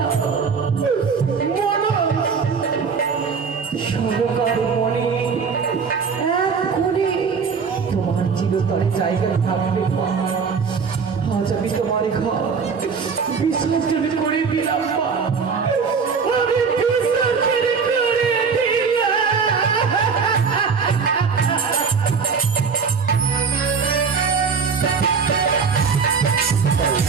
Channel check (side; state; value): left; quieter; 5.6 dB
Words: সরকার মনে এক কোণে তোমার চিরতরে জায়গা থাকবে মা। আজ আমি তোমার ঘর বিসর্জন করে দিলাম মা।